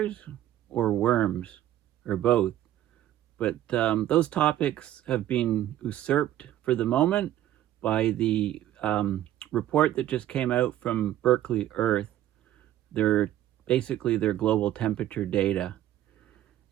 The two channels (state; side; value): quieter; left; 12.9 dB